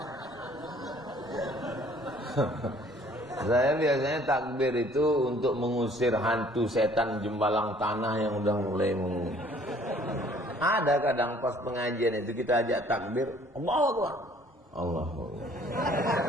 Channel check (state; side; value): normal; both; correlation 0.57